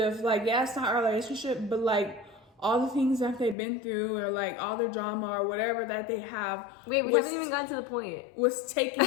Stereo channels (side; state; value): right; drops out; at 3.6 s